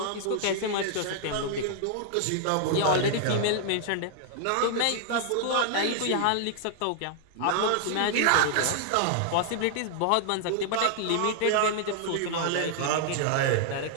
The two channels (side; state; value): both; different; correlation -0.01